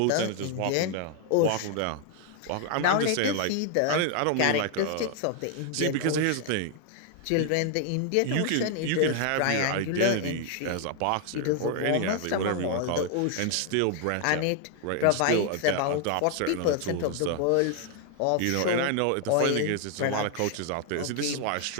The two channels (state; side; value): different; both; correlation 0.00